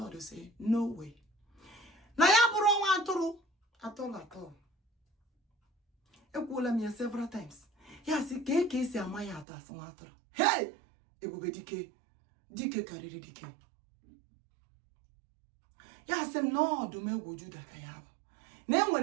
will say, no way. Na ya buru waturu at all. Ekwula me several times. Ya si ke si amaya atas waturu. Hey! Ebube Dike kariri Dike. Ya sem no Odumegwu Juda ka ya bụ. Na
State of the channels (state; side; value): drops out; left; at 9.5 s